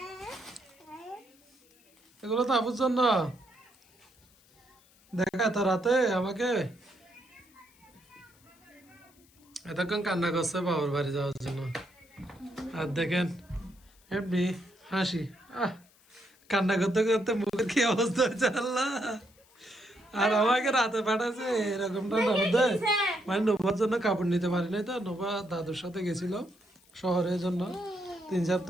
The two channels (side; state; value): left; noise; hiss, 30 dB below the sound